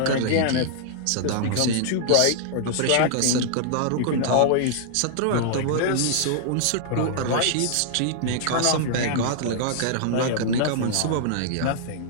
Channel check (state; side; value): different; both; correlation -0.01